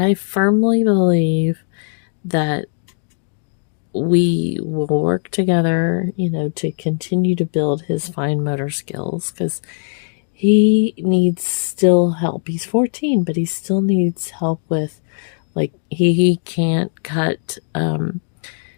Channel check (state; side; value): silent; right; digital silence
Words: firmly believe that we will work together, to continue to build his fine motor skills, because he needs still help. He's 14, but he still needs help with, like, he can't cut,